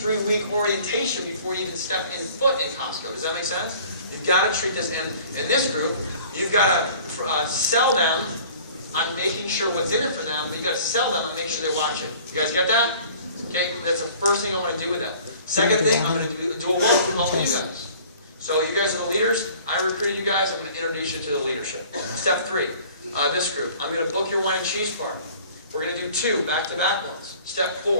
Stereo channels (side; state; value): both; inverted; correlation -0.49